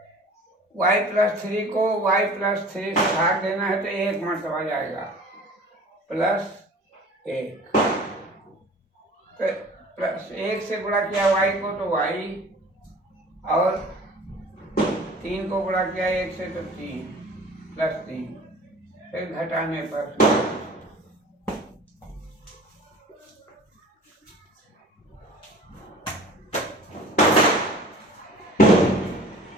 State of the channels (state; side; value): normal; both; correlation 0.45